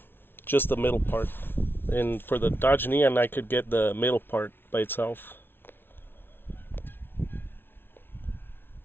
just the middle part. And for the Dodge Neon, I could get the middle part by itself.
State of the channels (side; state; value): right; late; 0.11 ms